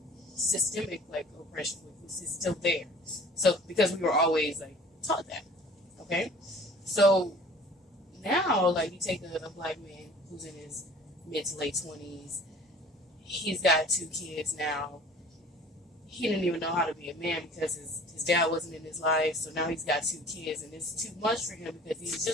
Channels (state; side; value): normal; both; correlation 0.48